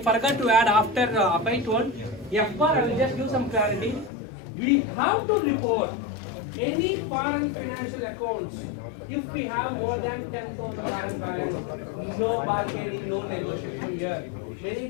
to add after Abhay told. FPAR, I will just give some clarity. We have to report any foreign financial accounts if we have more than $10,000 balance. No bargaining, no negotiation here. Many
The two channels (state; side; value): drops out; right; at 4.1 s